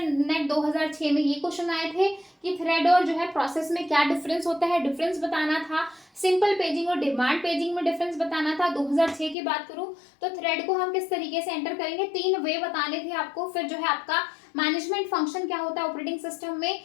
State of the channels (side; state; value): right; drops out; at 9.3 s